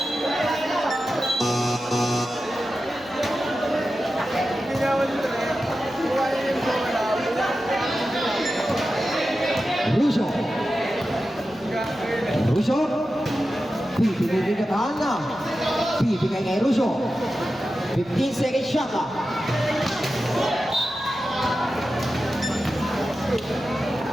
Russo. Russo. Bibigay kay Katana. Bibigay kay Russo. 15 seconds shot up.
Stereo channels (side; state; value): left; noise; hum, 27 dB below the sound